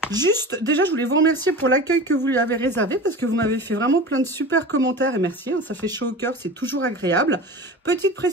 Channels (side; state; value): both; normal; correlation 0.33